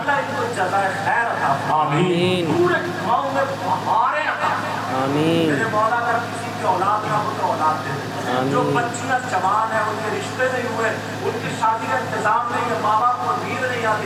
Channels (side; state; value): both; identical; correlation 1.00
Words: ان کو جزائے خیر عطا فرمائے، پورے گاؤں میں بہاریں عطا فرمائے۔ میرے مولا اگر کسی کی اولاد نہ ہو تو اولاد دے دے، جو بچیاں جوان ہیں ان کے رشتے نہیں ہوئے، ان کی شادی کا انتظام نہیں ہے، ماں باپ کو نیند نہیں